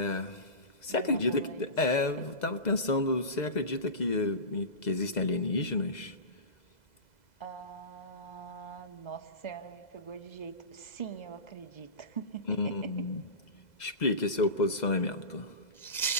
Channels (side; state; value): right; late; 2.0 ms